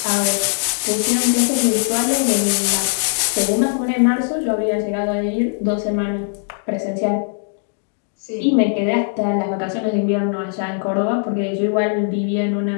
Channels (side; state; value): right; silent; digital silence